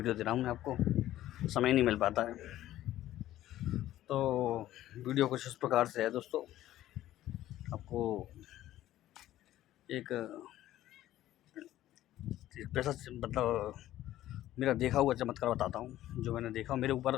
दे रहा हूँ मैं आपको, समय नहीं मिल पाता है। तो वीडियो कुछ इस प्रकार से है दोस्तों, आपको एक पैसा मतलब मेरा देखा हुआ चमत्कार बताता हूँ। जो मैंने देखा मेरे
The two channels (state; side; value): quieter; right; 13.9 dB